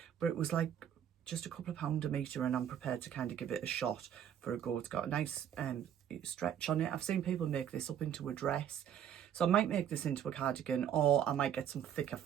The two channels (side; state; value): left; quieter; 9.5 dB